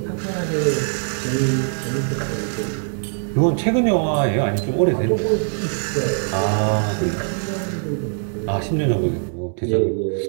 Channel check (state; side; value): silent; left; 64 dB below the other